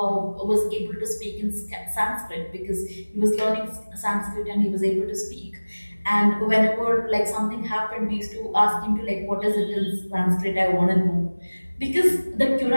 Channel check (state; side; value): inverted; both; correlation -1.00